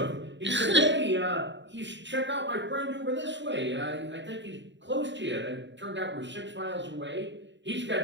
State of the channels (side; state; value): left; late; 0.53 ms